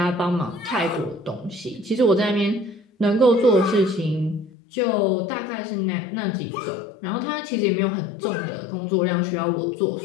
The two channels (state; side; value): drops out; right; at 4.5 s